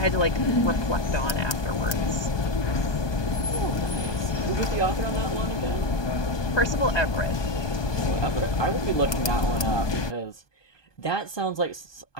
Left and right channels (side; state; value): right; late; 1.2 ms